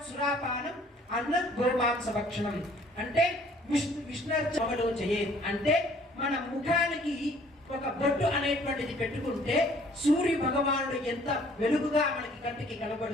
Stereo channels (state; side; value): normal; both; correlation 0.57